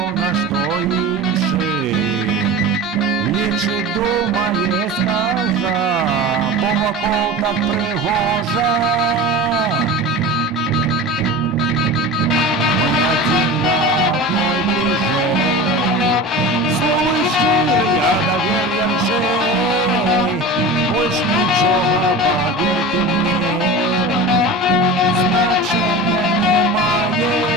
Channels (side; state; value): both; normal; correlation 0.32